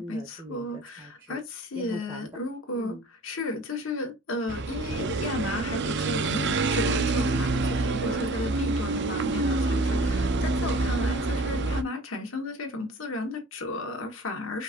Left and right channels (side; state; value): both; normal; correlation 0.45